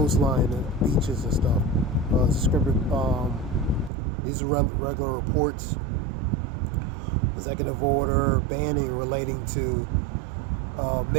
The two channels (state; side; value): drops out; left; at 3.9 s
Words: the beaches and stuff. These are regular reports. Executive order banning relating to